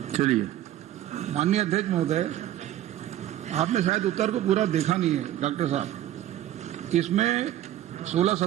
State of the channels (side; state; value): left; quieter; 12.8 dB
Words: चलिए। माननीय अध्यक्ष महोदय, आपने शायद उत्तर को पूरा देखा नहीं है डॉक्टर साहब। इसमें 16,